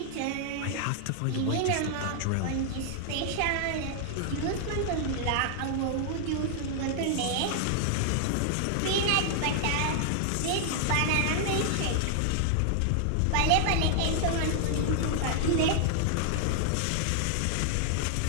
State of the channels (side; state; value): both; different; correlation 0.00